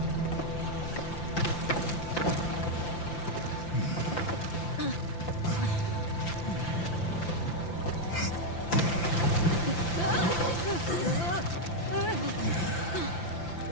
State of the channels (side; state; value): right; late; 5.9 ms